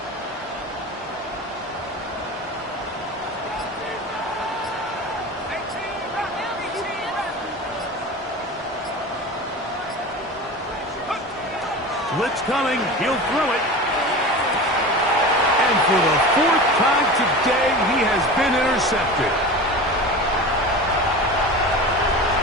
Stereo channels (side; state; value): both; normal; correlation 0.31